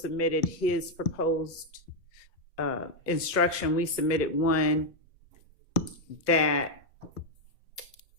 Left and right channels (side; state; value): both; normal; correlation 0.01